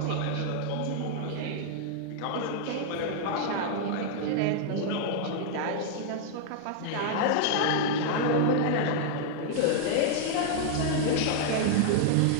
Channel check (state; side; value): different; both; correlation -0.01